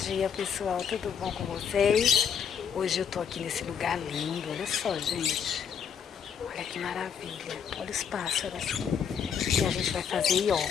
dia, pessoal, tudo bom com vocês? Hoje eu tô aqui nesse lugar lindo, olha só, gente. Olha que maravilha, olha os pássaros. E a gente vai fazer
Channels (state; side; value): quieter; right; 7.5 dB